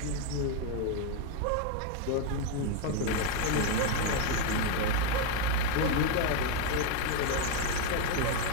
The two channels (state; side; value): different; both; correlation 0.01